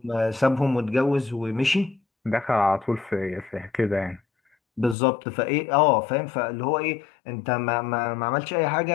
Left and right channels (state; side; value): drops out; right; at 5.0 s